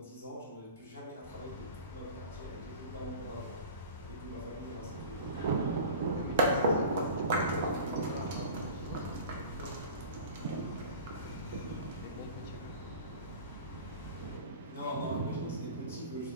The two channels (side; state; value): both; inverted; correlation -0.37